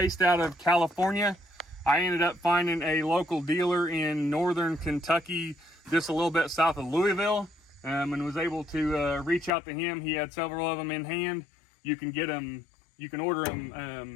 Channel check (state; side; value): drops out; right; at 9.5 s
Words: out of California. I ended up finding a local dealer in northern Kentucky, just a little bit south of Louisville, and was able to reach out to him. He had several of them in hand. You can get them, you can order